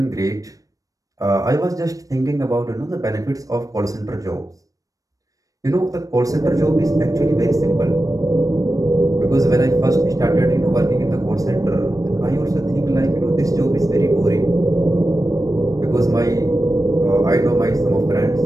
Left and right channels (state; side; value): late; left; 0.16 ms